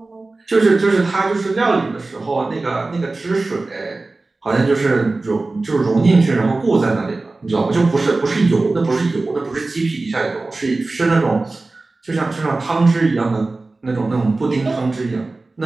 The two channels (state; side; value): quieter; left; 3.3 dB